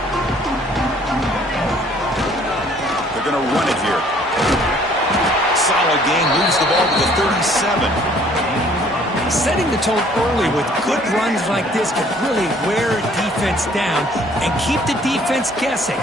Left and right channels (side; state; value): both; normal; correlation 0.58